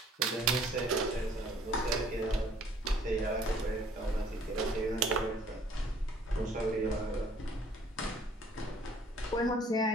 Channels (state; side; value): normal; both; correlation 0.58